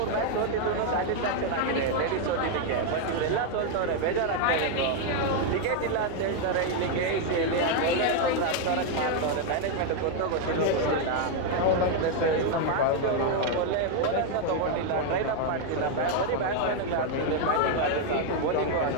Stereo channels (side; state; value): both; different; correlation 0.01